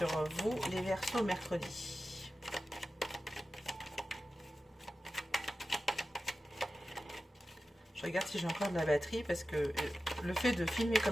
vous, les Verseaux, mercredi? Je regarde si j'ai encore de la batterie, parce que le fait de filmer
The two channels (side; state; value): both; normal; correlation 0.93